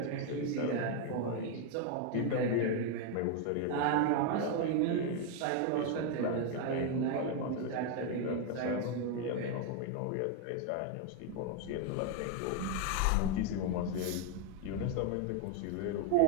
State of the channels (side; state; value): both; different; correlation 0.01